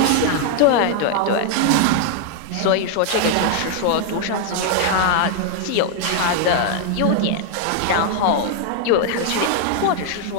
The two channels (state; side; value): different; both; correlation 0.00